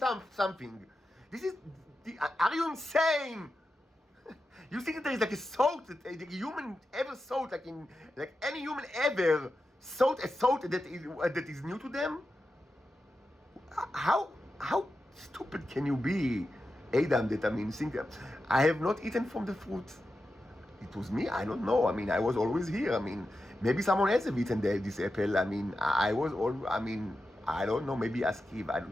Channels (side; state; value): both; normal; correlation 0.90